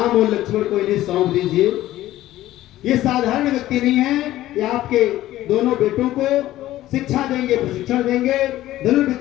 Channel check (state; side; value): quieter; right; 14.8 dB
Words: और लक्ष्मण को इन्हें सौंप दीजिए। ये साधारण व्यक्ति नहीं है, ये आपके दोनों बेटों को शिक्षा देंगे, प्रशिक्षण देंगे,